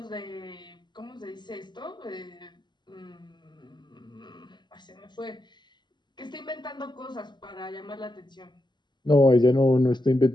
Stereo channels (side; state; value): right; late; 0.21 ms